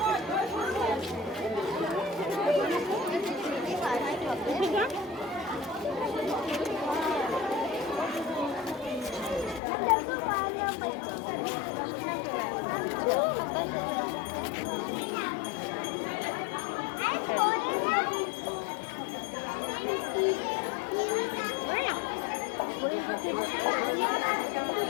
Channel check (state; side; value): drops out; right; at 9.6 s